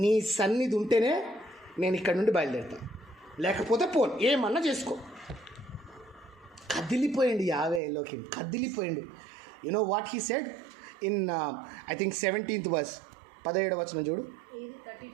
నీ సన్నిధి ఉంటేనే నేను ఇక్కడ నుండి బయలుదేరుతాను, లేకపోతే పోను, ఏమన్నా చేసుకో. కదిలిపోయింది యావేలోకి, కదిలిపోయింది. You know what he said in I think 17th verse, 17వ వచనం చూడు,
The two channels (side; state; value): left; drops out; at 7.8 s